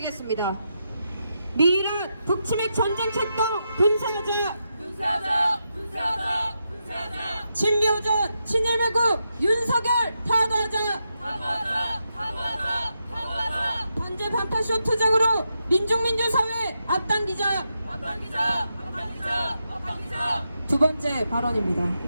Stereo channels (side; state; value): both; inverted; correlation -0.85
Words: 미란 북치맥 전쟁 책동 분사하자! 분사하자! 분사하자! 분사하자! 친미오전 친일매국 윤석열 파도하자! 파도하자! 파도하자! 파도하자! 반제 반파쇼 투쟁으로 민중민주사회 앞당기자! 앞당기자! 앞당기자! 앞당기자! 두 번째 발언입니다.